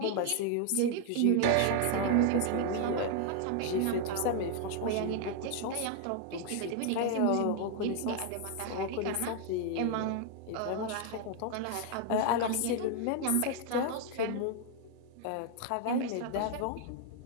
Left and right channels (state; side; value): different; both; correlation 0.00